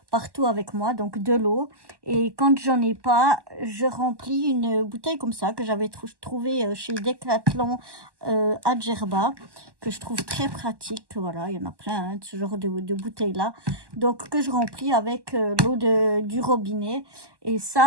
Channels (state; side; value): late; left; 1.1 ms